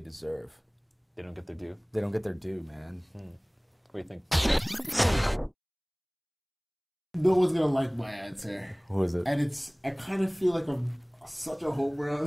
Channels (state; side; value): identical; both; correlation 1.00